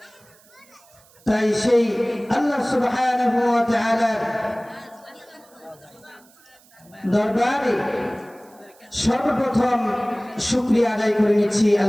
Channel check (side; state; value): right; noise; hiss, 29 dB below the sound